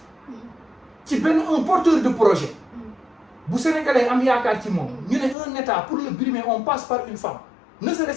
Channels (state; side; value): drops out; right; at 5.4 s